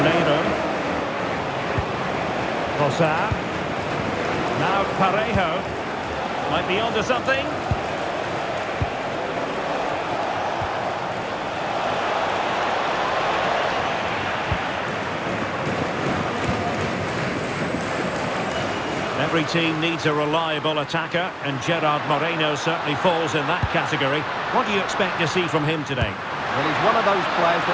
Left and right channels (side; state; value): both; identical; correlation 1.00